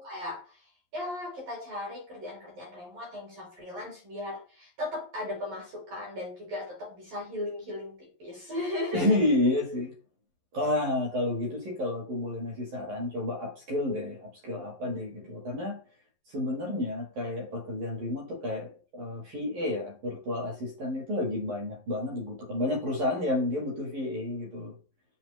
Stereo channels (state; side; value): late; left; 11 ms